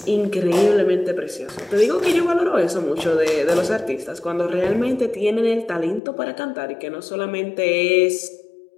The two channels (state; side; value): drops out; right; at 6.0 s